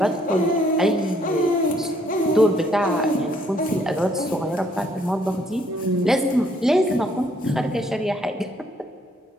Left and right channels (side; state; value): both; normal; correlation 0.67